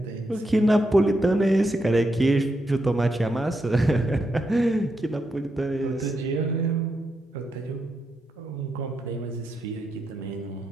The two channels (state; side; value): normal; both; correlation 0.83